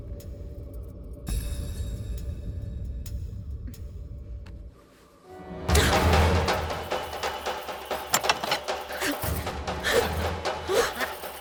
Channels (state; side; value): identical; both; correlation 1.00